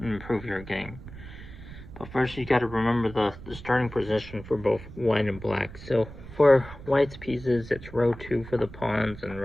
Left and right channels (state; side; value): noise; right; rumble, 15 dB below the sound